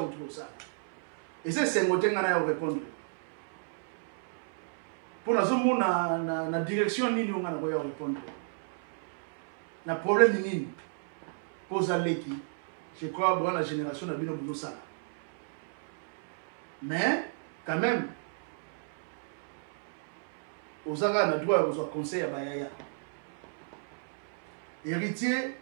autour ça. Et c'est sengote ngana ya répondre. Pour na zo na direction nini ngana ko ya répondre. Na problème nini? Pose à l'équipe. Je crois que la génération n'a pas besoin de ça. Mais, quand même, aux Agas, on a droit aux conseils à Bayaya. Héritier,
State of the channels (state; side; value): silent; left; 56 dB below the other